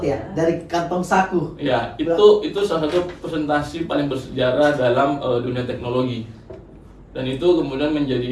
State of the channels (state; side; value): identical; both; correlation 1.00